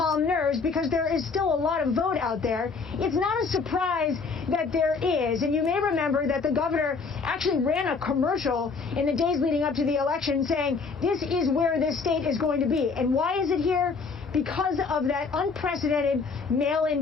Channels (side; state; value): right; quieter; 4.8 dB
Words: nerves because there is still a lot of vote out there. It's not a surprise that there is. And you may remember that the governor actually ran a commercial in the days leading up to the election saying, this is where this state is going to be. And why is it here? Because of that unprecedented